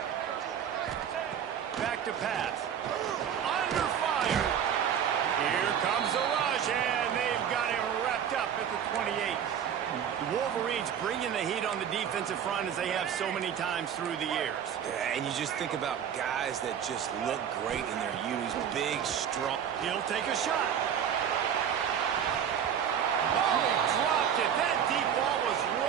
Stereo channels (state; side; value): quieter; left; 8.7 dB